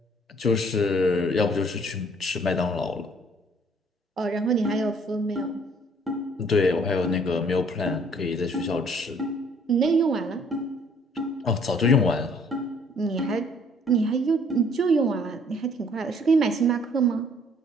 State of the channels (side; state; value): both; normal; correlation 0.60